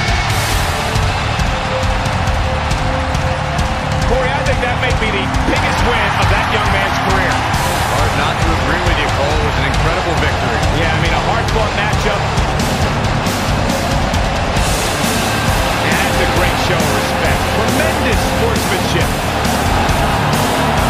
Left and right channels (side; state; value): both; identical; correlation 1.00